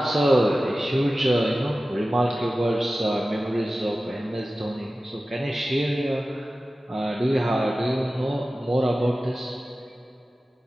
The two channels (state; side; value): normal; both; correlation 0.95